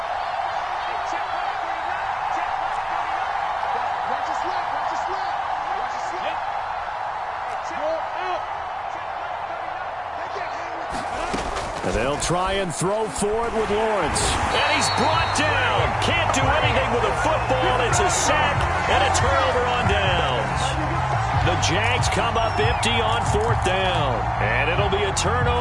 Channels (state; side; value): identical; both; correlation 1.00